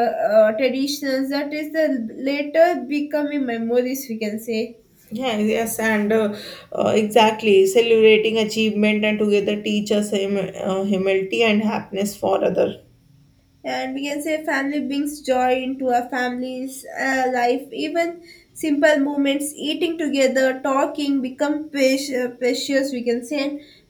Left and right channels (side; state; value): both; identical; correlation 1.00